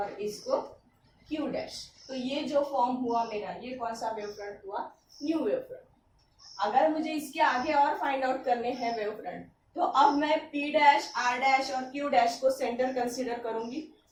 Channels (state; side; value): identical; both; correlation 1.00